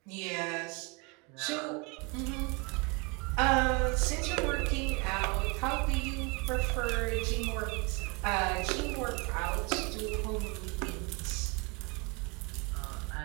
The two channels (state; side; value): quieter; left; 29.8 dB